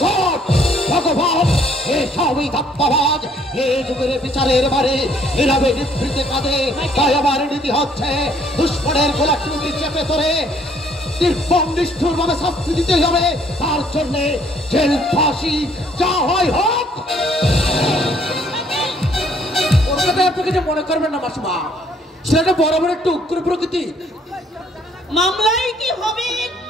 ভগবান, এ সবই ধাপ্পাবাজ। এই যুগের বিচারের বারে এভাবে নিভৃতে কাঁদে। তাই আমার নীতি হচ্ছে দুশ্মনের গোলাকৃতি চেপে ধরে নির্মম নিষ্ঠুর ভাবে শাস্তি দিতে হবে। তার জন্য জেল ফাঁসি যা হয় হোক। ওর কথা আপনি কিছু মনে করবেন না মাসিমা, সেটা বরাবর একটু উগ্র প্রকৃতি। মামলায় কি হবে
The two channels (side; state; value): both; normal; correlation 0.63